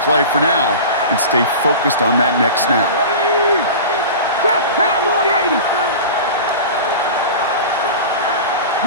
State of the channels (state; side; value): inverted; both; correlation -0.32